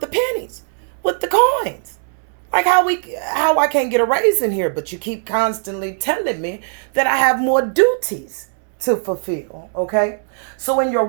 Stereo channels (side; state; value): left; silent; 66 dB below the other